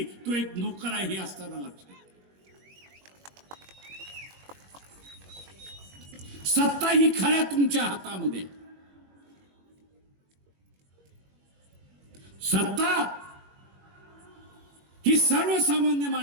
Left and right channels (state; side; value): late; left; 21 ms